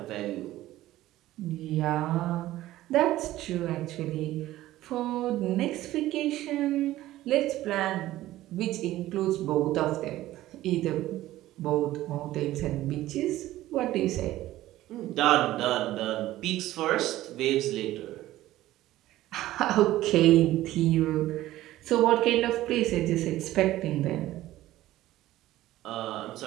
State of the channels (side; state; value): left; quieter; 15.3 dB